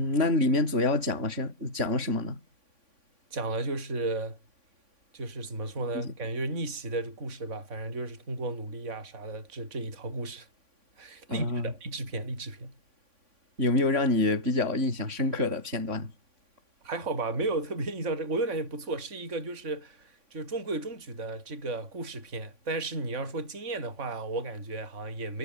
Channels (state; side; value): late; left; 3.5 ms